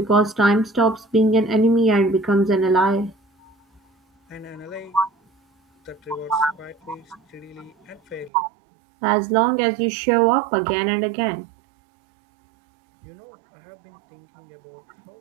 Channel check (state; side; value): drops out; left; at 8.3 s